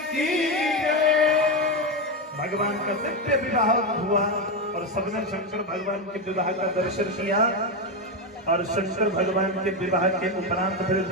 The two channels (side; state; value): both; normal; correlation 0.11